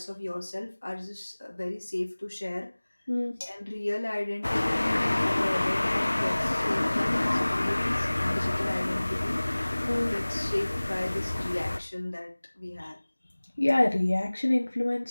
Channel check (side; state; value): both; inverted; correlation -1.00